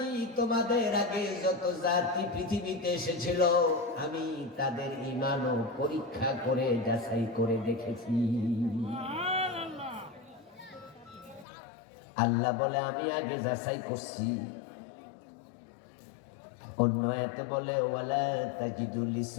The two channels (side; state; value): right; drops out; at 11.5 s